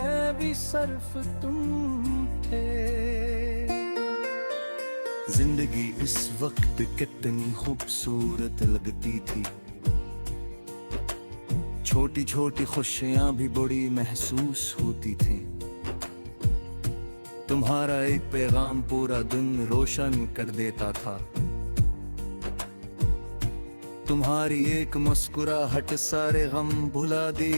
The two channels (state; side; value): inverted; both; correlation -1.00